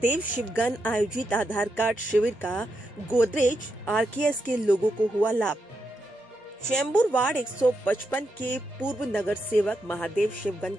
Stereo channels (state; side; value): normal; both; correlation 0.84